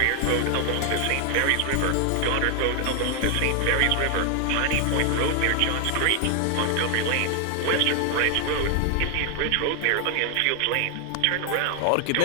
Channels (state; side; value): different; both; correlation 0.00